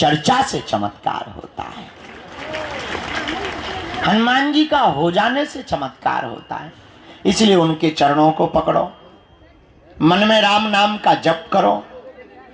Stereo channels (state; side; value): identical; both; correlation 1.00